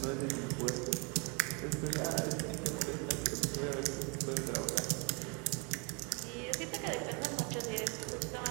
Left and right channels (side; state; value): left; quieter; 33.4 dB